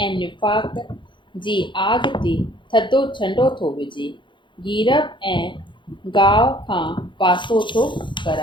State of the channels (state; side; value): late; right; 0.23 ms